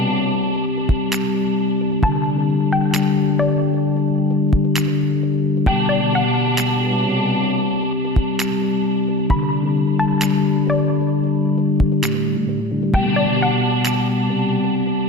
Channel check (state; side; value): normal; both; correlation 0.39